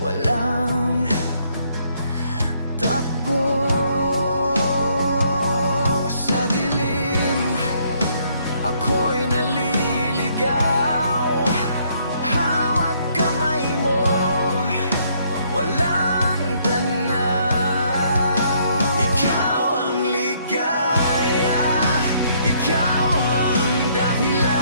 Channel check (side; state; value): both; inverted; correlation -0.68